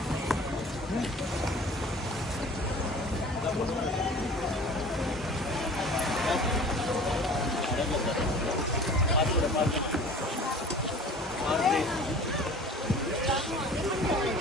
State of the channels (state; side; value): normal; both; correlation 0.44